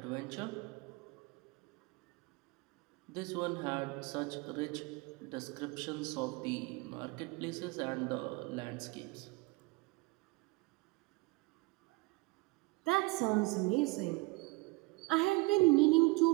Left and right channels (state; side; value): quieter; left; 25.2 dB